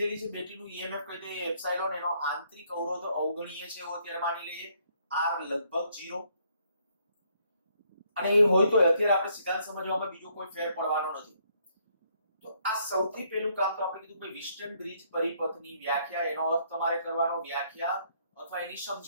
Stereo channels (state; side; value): inverted; both; correlation -0.68